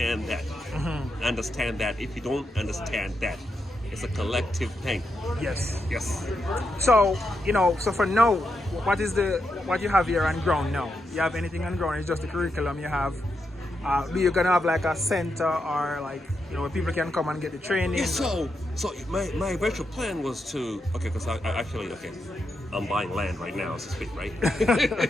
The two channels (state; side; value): normal; both; correlation 0.84